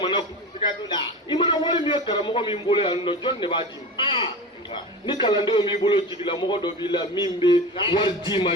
kun i mana wari min ye karamɔgɔ min bolo yan nɔ jɔn de b'a d'i ma ni kalandenw b'i bolo jigilamɔgɔ dɔ b'i la min bɛ wari d'i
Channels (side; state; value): both; normal; correlation 0.30